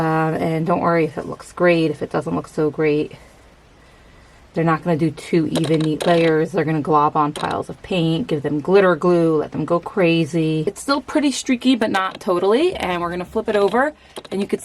don't worry if it looks great, if it doesn't look so great. They're not going to do 2 even, neat layers. They're going to glob on piles of paint, give them glitter glue, let them go crazy. It's still pretty streaky, but not totally. And we're going to flip it over, and you can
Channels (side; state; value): both; identical; correlation 1.00